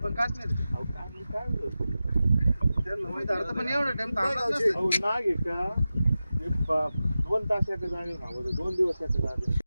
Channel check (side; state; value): both; inverted; correlation -0.94